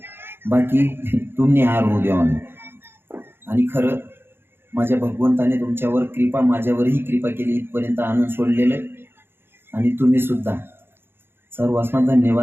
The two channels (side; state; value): left; late; 0.11 ms